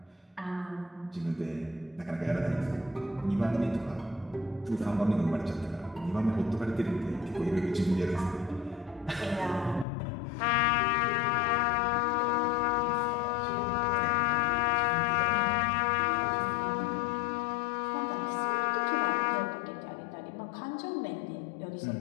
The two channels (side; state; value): right; drops out; at 9.9 s